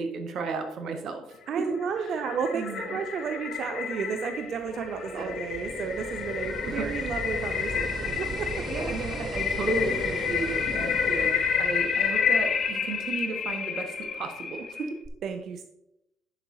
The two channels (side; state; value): both; normal; correlation 0.66